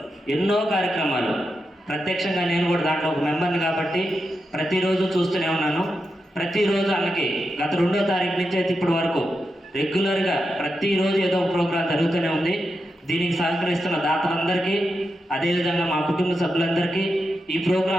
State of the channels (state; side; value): normal; both; correlation 0.88